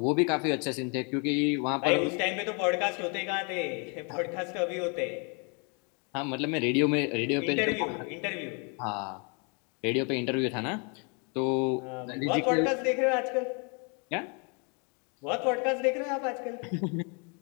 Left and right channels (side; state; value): right; quieter; 34.9 dB